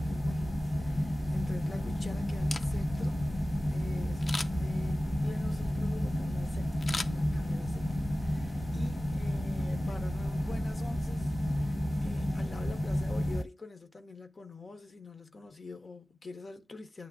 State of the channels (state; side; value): normal; both; correlation 0.97